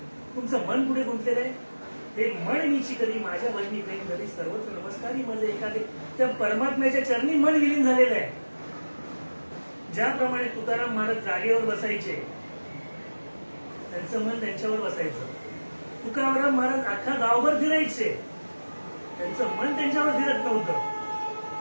तुमचं मन पुढे गुंतलेलं आहे. हे मन मीची कधी माझ्या भजनी प्रेम झाली सर्वत्र नमस्कारी माझे एखादे. त्या परमात्म्याच्या चरणी मन विलीन झालेलं आहे. ज्याप्रमाणे तुकाराम महाराज जागेवर बसायचे, त्यांचं मन त्यांच्यावर बसायचं. तुकाराम महाराज अख्खा गावभर फिरायचे, त्यांचं मन त्यांच्यावर फिरत नव्हतं.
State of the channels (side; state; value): both; inverted; correlation -1.00